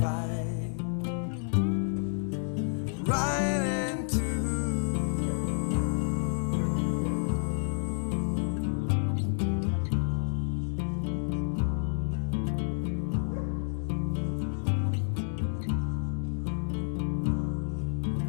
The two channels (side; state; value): right; silent; digital silence